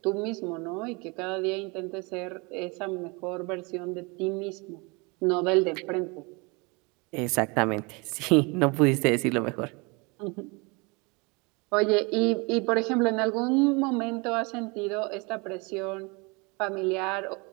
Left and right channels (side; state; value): left; quieter; 28.6 dB